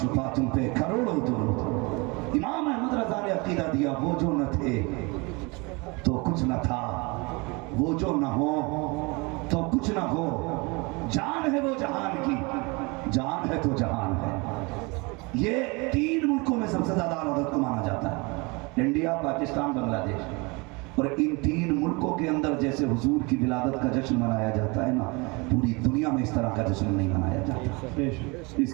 تم پہ کروڑوں درود۔ امام احمد رضا نے عقیدہ دیا، وہ جو نہ تھے تو کچھ نہ تھا، وہ جو نہ ہو تو کچھ نہ ہو، جان ہے وہ جہان کی، جان ہے تو جہان ہے۔ یہ 3 ملکوں میں سب سے زیادہ اعلیٰ حضرت کو مانا جاتا ہے، انڈیا، پاکستان، بنگلہ دیش۔ اور ان 3 ملکوں کے اندر جیسے حضور کی ولادت کا جشن منایا جاتا ہے نا، پوری دنیا میں اس طرح کا جشن نہیں منایا جاتا۔ اس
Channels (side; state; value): left; quieter; 27.7 dB